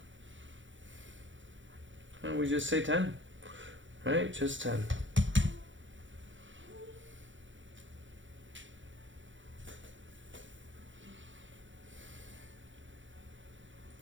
And we just say 10. Right? Just 10.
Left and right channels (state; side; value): late; left; 0.55 ms